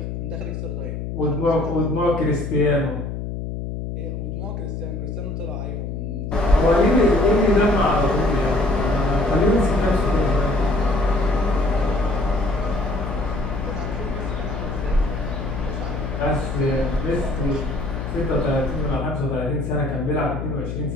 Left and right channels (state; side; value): noise; left; hum, 5 dB below the sound